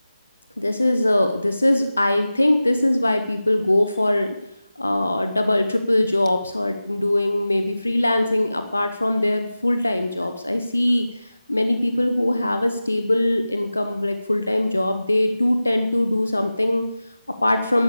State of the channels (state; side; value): inverted; both; correlation -0.95